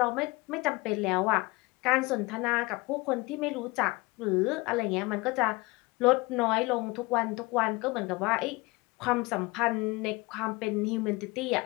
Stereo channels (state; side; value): quieter; right; 23.9 dB